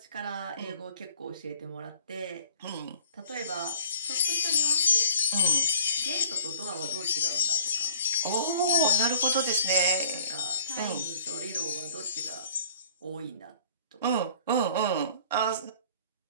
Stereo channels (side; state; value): both; inverted; correlation -0.53